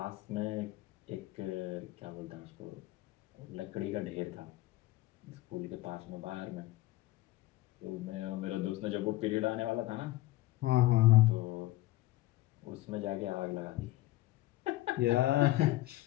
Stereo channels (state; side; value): quieter; right; 16.9 dB